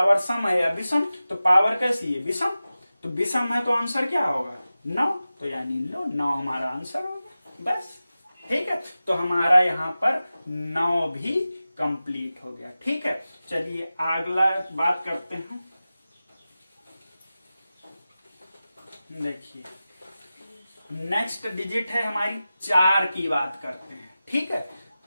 सम है या विषम? तो पावर कैसी है? विषम। तो विषम है तो आंसर क्या होगा? 9। तो यानी लो 9 हमारा आंसर होगा। बस ठीक है, तो हमारा यहाँ पर 9 भी कंप्लीट हो गया। ठीक है, चलिए अगला बात करते हैं। देखिए नेक्स्ट डिजिट है हमारी 4 की बात करते हैं। ठीक है,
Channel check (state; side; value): inverted; both; correlation -0.95